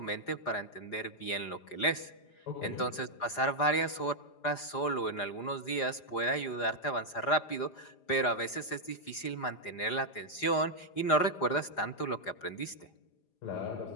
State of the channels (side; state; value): right; late; 4.9 ms